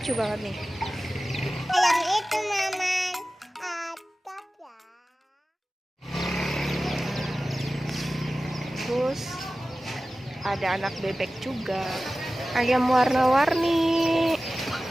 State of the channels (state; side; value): normal; both; correlation 0.96